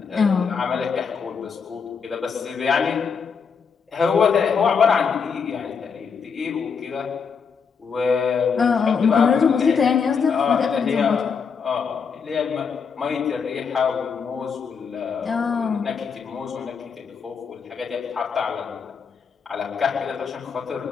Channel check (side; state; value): right; quieter; 6.0 dB